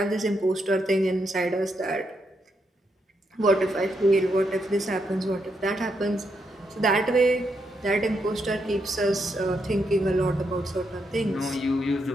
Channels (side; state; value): both; normal; correlation 0.80